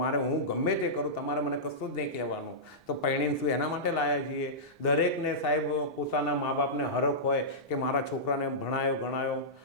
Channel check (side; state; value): both; normal; correlation -0.15